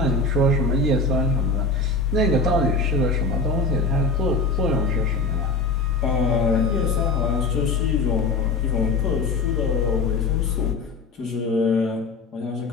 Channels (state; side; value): quieter; right; 3.7 dB